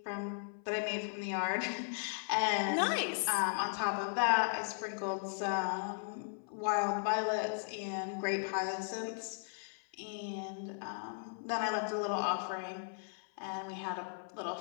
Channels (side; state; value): right; silent; 53 dB below the other